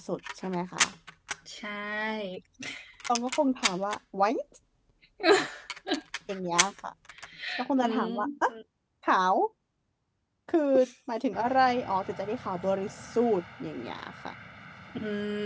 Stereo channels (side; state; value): both; identical; correlation 1.00